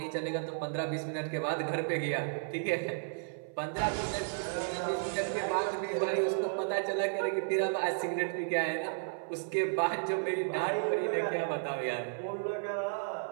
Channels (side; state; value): left; silent; 56 dB below the other